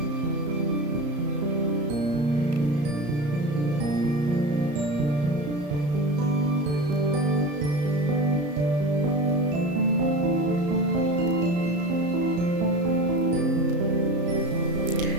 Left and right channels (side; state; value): left; late; 34 ms